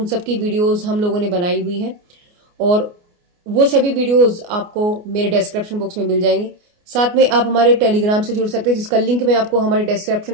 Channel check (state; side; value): late; left; 29 ms